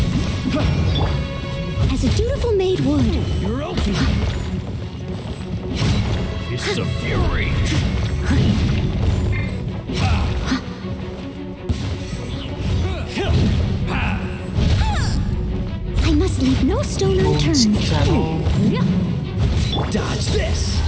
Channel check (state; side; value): identical; both; correlation 1.00